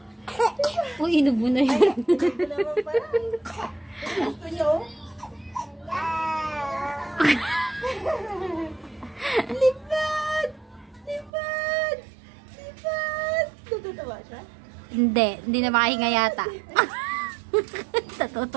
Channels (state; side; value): drops out; left; at 11.3 s